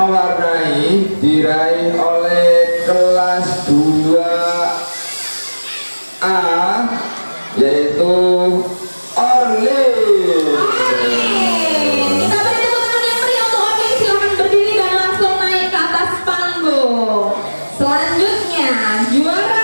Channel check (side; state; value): both; inverted; correlation -1.00